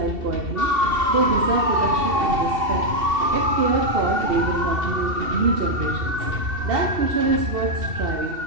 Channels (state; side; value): late; left; 2.7 ms